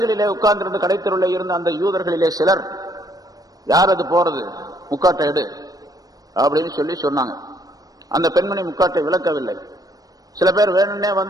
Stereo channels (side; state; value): left; late; 0.18 ms